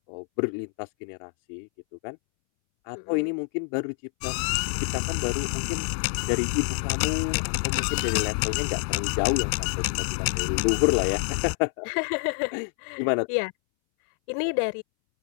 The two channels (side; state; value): right; silent; 60 dB below the other